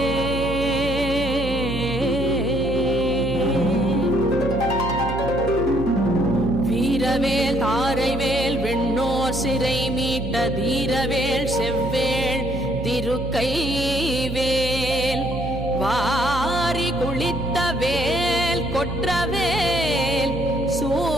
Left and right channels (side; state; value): right; noise; hum, 6 dB below the sound